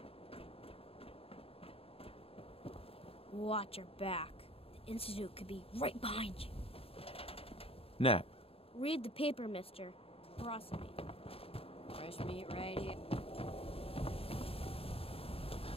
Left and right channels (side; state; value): right; late; 0.28 ms